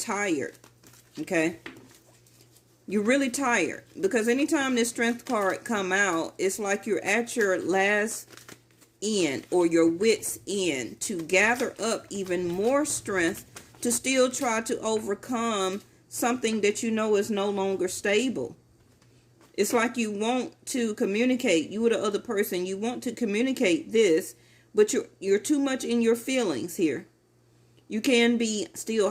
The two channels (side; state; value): both; identical; correlation 1.00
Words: okay? You're really tired because anytime this strength card come out, it's like you're at your last end or your wits end to gather up even more strength to still try to overcome something that you know is no longer stable. It's like you want to communicate, you or the other person, you want to communicate this, but you're too much in your feelings here. You can be